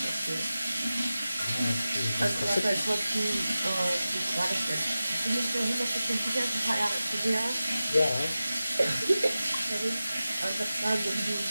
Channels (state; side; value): inverted; both; correlation -0.95